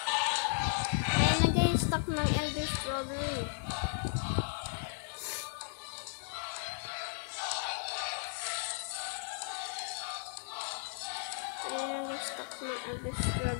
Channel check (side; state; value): right; silent; digital silence